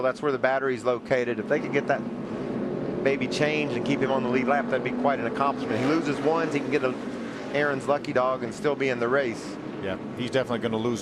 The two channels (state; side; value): identical; both; correlation 1.00